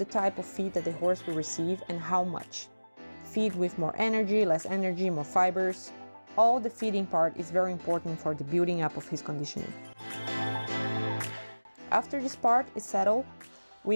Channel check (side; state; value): both; inverted; correlation -1.00